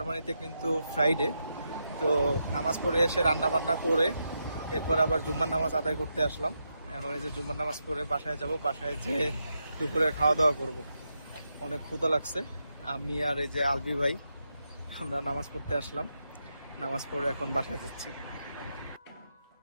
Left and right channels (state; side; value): inverted; both; correlation -0.84